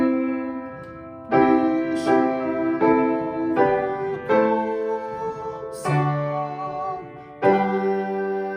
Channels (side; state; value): both; identical; correlation 1.00